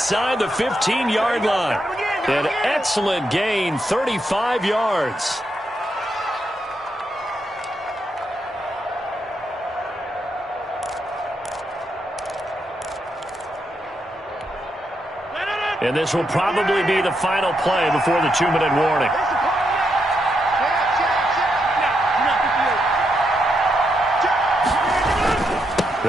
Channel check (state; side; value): normal; both; correlation 0.81